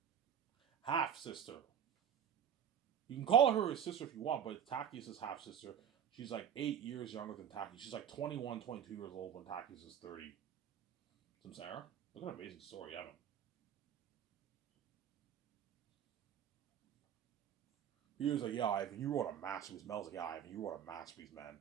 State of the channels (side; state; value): left; quieter; 8.9 dB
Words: Half sister. You can call her his sister if you want, but it's Tactius's half sister. She's like 8 years younger than Tactius. She's like 21, 22 years old when Tactius is 30. Some Sarah? Look at an amazing story, Evan. He was like, yeah, Ivan, you wrote a masterpiece. Mel's like, yeah, Ivan, you wrote a masterpiece, man.